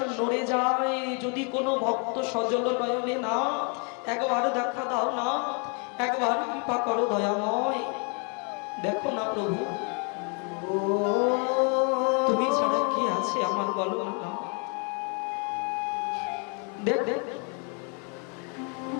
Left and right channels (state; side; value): quieter; right; 37.4 dB